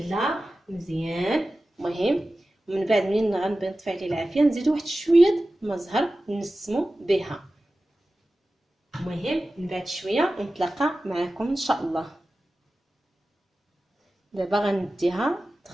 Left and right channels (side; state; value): both; normal; correlation 0.95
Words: مزيان. المهم من بعد منين غنبي نطفي عليه العافيه نزيدو واحد شويه الماء زهر نسمو بها. المهم من بعد شويه نتلاقى معكم ان شاء الله. دابا غنديها